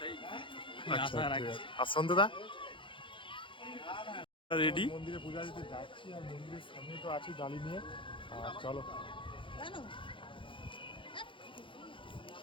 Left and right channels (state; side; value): late; right; 0.25 ms